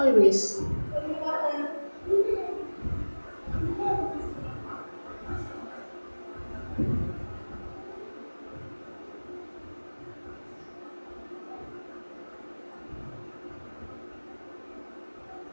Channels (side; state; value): both; inverted; correlation -1.00